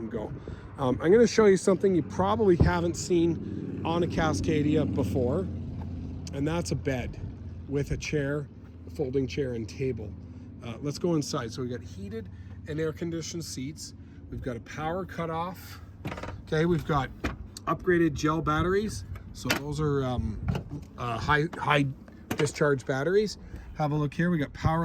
go. I'm going to show you something you probably haven't seen on a Cascadia before, and that's a bed with a chair, a folding chair and table. Let's go inside. So we got heated and air conditioned seats. We've got a power cutoff. Okay, we've got upgraded gel batteries. So those are high discharge batteries. Have a look here. We got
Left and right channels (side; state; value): both; identical; correlation 1.00